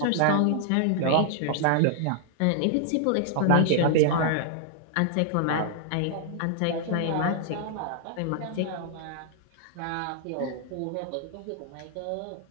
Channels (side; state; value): both; different; correlation -0.01